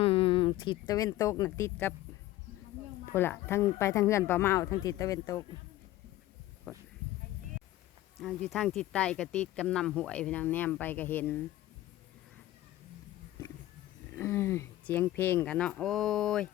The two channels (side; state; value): right; quieter; 15.3 dB